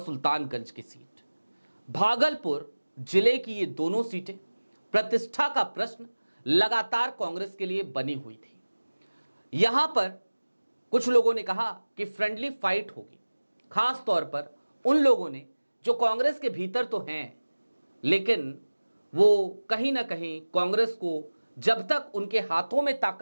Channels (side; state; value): both; inverted; correlation -1.00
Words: की सीट, भागलपुर जिले की ये दोनों सीटें प्रतिष्ठा का प्रश्न लगातार कांग्रेस के लिए बनी हुई थी। यहां पर कुछ लोगों ने कहा कि फ्रेंडली फाइट होगी, खास तौर पर उन लोगों ने जो कांग्रेस के भीतर तो हैं, लेकिन वो कहीं ना कहीं कांग्रेस को, जब तक उनके हाथों में